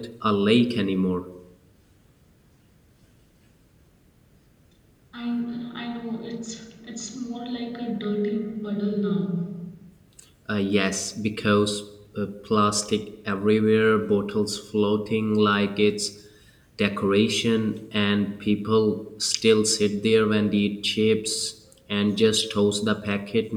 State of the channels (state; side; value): identical; both; correlation 1.00